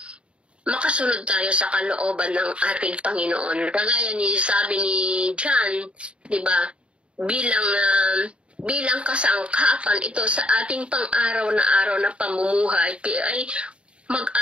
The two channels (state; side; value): late; left; 0.057 ms